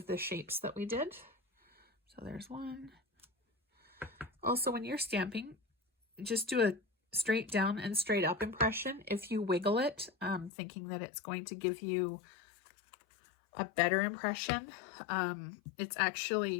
the shapes that we did. So there's one. Also, when you're stamping, just do a straight down and straight up impression. If you wiggle it, thinking that it's going to give you a better impression, it's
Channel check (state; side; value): drops out; right; at 10.5 s